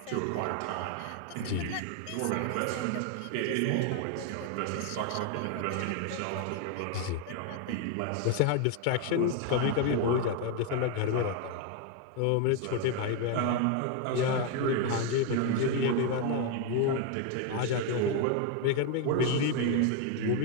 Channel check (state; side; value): different; both; correlation 0.01